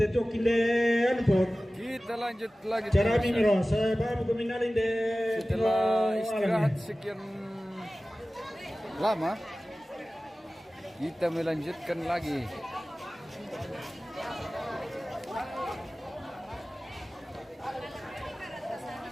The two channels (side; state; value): both; normal; correlation 0.97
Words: kilen pot. Kita lanjut lagi. Cara mimiro, saya baru keminalin deh. Setelah istirahat sekian lama, kita melanjutkan lagi.